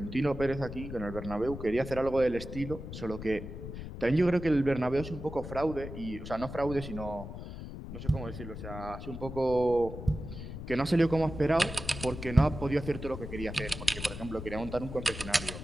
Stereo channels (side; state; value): left; noise; rumble, 9 dB below the sound